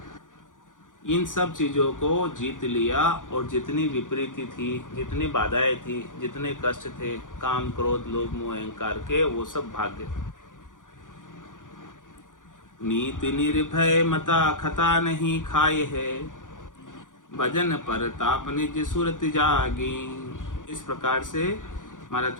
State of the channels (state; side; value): late; right; 0.88 ms